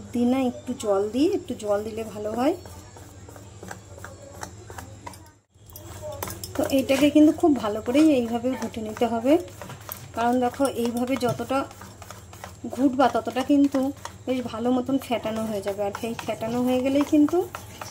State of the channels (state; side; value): identical; both; correlation 1.00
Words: দিই না, একটু জল দিই, একটু জল দিলে ভালো হয়। তো এইটাকে কিন্তু খুব ভালো করেই এইভাবে ঘুটে নিতে হবে, কারণ দেখো এইভাবে যতটা ঘুটবা ততটা কিন্তু বেশ ভালো মতন ফেটানো হয়ে যাবে। আর সেই ফেটানো হয়ে গেলেই কিন্তু